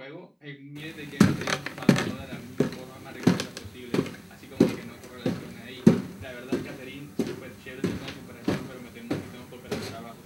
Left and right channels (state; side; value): identical; both; correlation 1.00